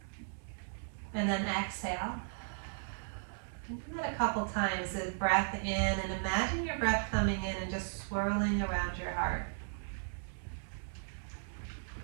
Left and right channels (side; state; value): left; silent; 54 dB below the other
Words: And then exhale. Do that a couple times, the breath in, and imagine your breath coming in and just swirling around your heart.